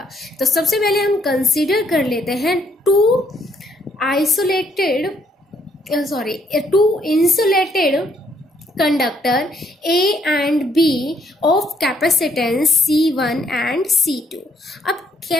तो सबसे पहले हम कंसीडर कर लेते हैं two insulated conductor A and B of capacitance C1 and C2। अब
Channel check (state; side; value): normal; both; correlation 0.70